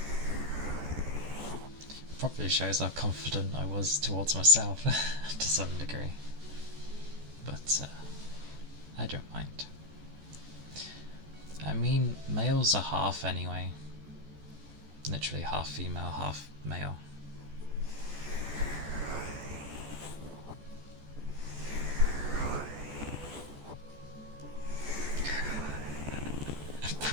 Probably shows how confident I was towards myself to some degree. But I don't mind. I mean, males are half anyway. Literally half female, half male. I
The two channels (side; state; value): left; late; 14 ms